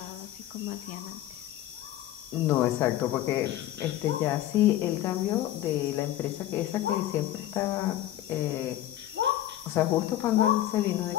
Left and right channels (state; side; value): quieter; right; 13.5 dB